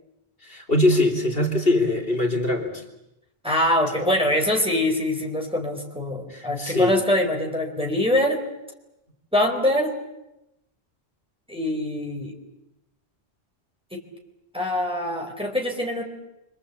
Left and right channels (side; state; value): both; normal; correlation 0.38